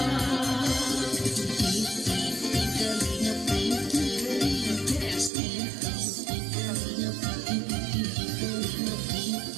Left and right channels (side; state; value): left; drops out; at 5.3 s